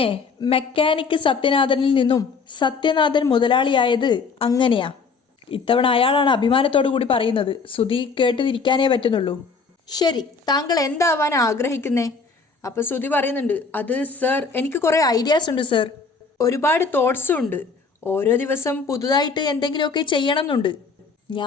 മെക്കാനിക്ക് സത്യനാഥനിൽ നിന്നും സത്യനാഥൻ മുതലാളിയായത് അങ്ങനെയാ. ഇത്തവണ അയാളാണ് അഭിമാനത്തോടു കൂടി പറയുന്നത്. ശ്രുതി കേട്ടിരിക്കാനേ പറ്റുന്നുള്ളൂ. ശരി, താങ്കൾ എന്താവാൻ ആഗ്രഹിക്കുന്നേ? അപ്പോൾ ശ്രുതി പറയുന്നുണ്ട്, അത് സർ എനിക്ക് കുറേ ഐഡിയാസ് ഉണ്ട് സർ, ഒരുപാട് തോട്ട്സും ഉണ്ട്. ഓരോ ദിവസം പുതുതായിട്ട് എന്തെങ്കിലുമൊക്കെ ചെയ്യണം എന്നുണ്ട്.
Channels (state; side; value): quieter; right; 4.8 dB